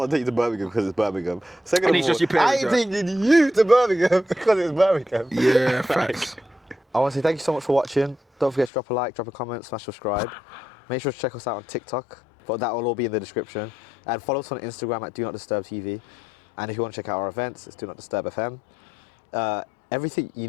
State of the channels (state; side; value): drops out; right; at 8.7 s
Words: to take you to Birmingham because it's Birmingham. Second of all, I ain't taking you to Birmingham because it's Birmingham. Yeah, facts. I want to say thank you so much for watching. Don't forget to drop a like, drop a comment, smash subscribe. Make sure to check us out on TikTok, but that will all be in the description. And follow us on Instagram at DONOTDISTURBTV. And if you want to check out our events, it's DONOTDISTURBFM. Everything you